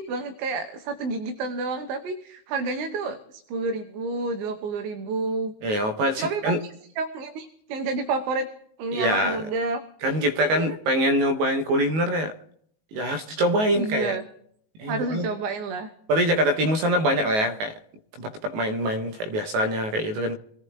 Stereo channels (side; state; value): left; late; 19 ms